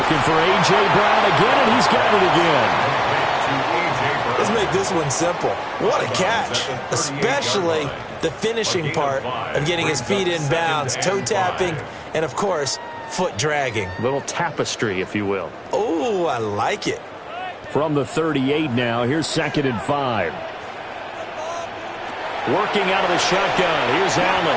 for A.J. Brown again, and he's got it again. Let's make this one simple. What a catch, especially the finishing part of getting his feet in bounds, toe tapping, and of course, foot dragging. Little tapestry, if you will. Oh, I like it. From the 38 now, here's 2nd and 5. Working out of the shotgun, here's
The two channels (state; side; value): identical; both; correlation 1.00